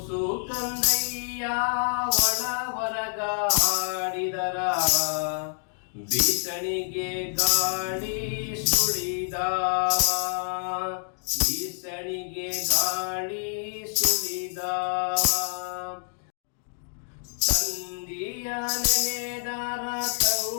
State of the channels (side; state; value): right; silent; digital silence